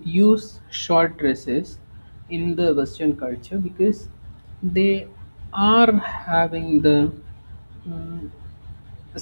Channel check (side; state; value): both; inverted; correlation -1.00